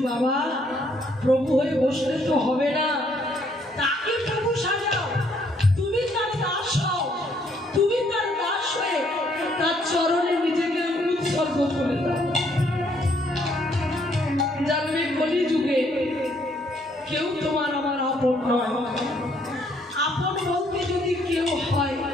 বাবা, প্রভু হয়ে বসলে তো হবে না, তাকে প্রভু সাজাও। তুমি তার দাস হও, তুমি তার দাস হয়ে তার চরণে নিজেকে উৎসর্গ করে দাও। জানবে কলিযুগে কেউ তোমার আমার আপন নয়। আপন বলতে যদি কেউ হয়,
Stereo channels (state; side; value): normal; both; correlation 0.68